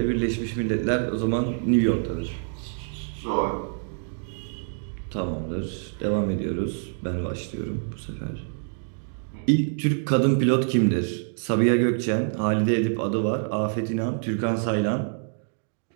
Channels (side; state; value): left; silent; 61 dB below the other